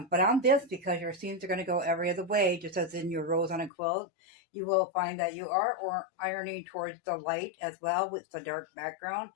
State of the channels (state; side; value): drops out; right; at 3.7 s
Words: on this, because your seams are going to go every other way, just as in your rows on a quilt, you will find that you are ironing towards the light as well with the dark background,